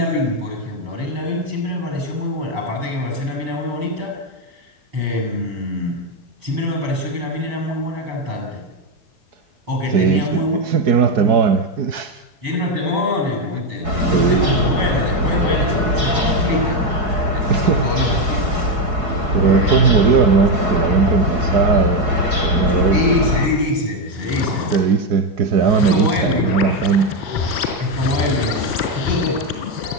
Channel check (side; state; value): left; late; 4.7 ms